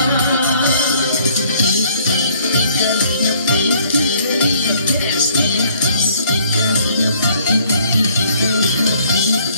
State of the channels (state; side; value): inverted; both; correlation -0.61